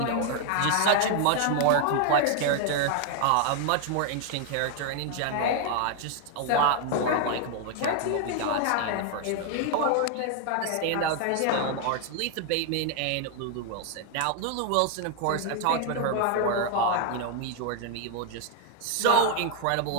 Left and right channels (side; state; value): both; different; correlation 0.00